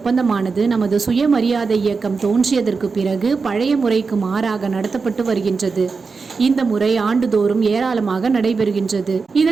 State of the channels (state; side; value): quieter; left; 4.7 dB